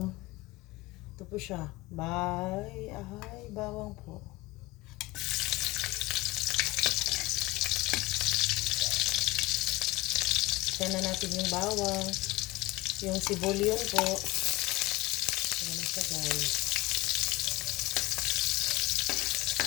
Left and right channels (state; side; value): quieter; right; 20.4 dB